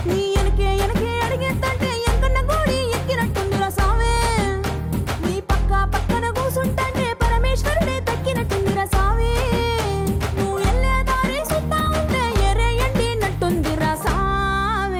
నీ ఎనకే ఎనకే అడిగేస్తాంటే ఎంకన్న గోడి ఎక్కినట్టుందిరా సామి. నీ పక్క పక్కన కూసుంటాంటే పరమేశ్వరుడే తక్కినట్టుందిరా సామి. నువ్వు ఎల్లే దారి సుత్తా ఉంటే ఎరే ఎండినట్టుందిరా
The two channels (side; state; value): both; identical; correlation 1.00